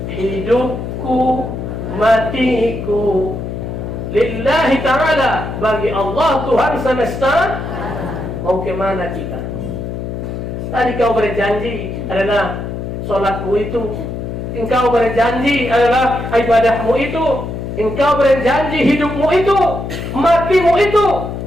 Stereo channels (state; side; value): noise; left; hum, 6 dB below the sound